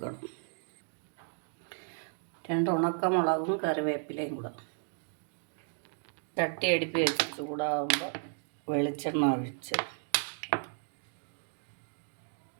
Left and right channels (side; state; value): left; silent; 55 dB below the other